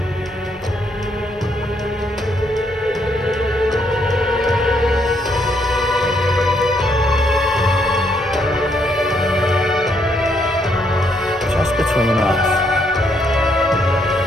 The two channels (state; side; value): normal; both; correlation 0.73